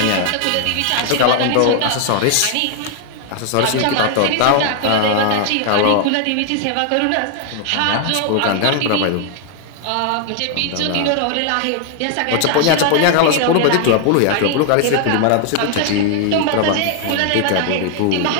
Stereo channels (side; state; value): both; different; correlation 0.00